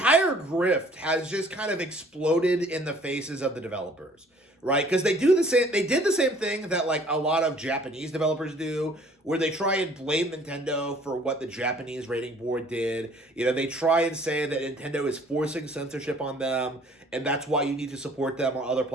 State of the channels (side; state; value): both; normal; correlation 0.56